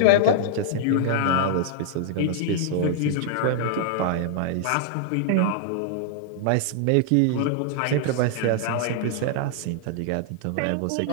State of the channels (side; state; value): both; different; correlation -0.01